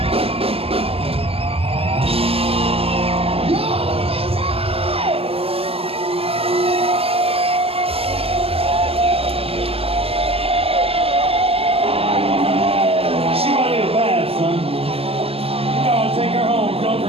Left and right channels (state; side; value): late; left; 0.28 ms